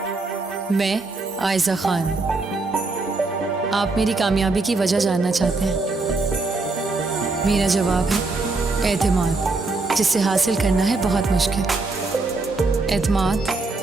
मैं आयजा खान, आप मेरी कामयाबी की वजह जानना चाहते हैं। मेरा जवाब है एतमाद, जिसे हासिल करना है बहुत मुश्किल। एतमाद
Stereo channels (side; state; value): left; quieter; 3.5 dB